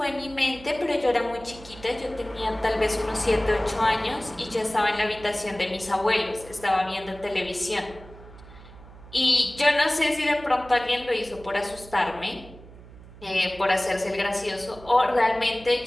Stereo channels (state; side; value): noise; right; hum, 19 dB below the sound